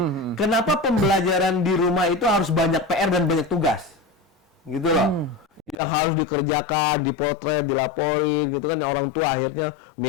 Kenapa pembelajaran di rumah itu harus banyak PR dan banyak tugas, gitu loh. Yang harus dikerjakan, dipotret, dilaporin, gitu kan. Orang tua akhirnya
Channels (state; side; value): drops out; right; at 5.8 s